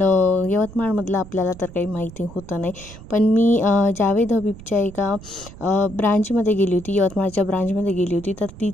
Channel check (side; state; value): right; noise; rumble, 17 dB below the sound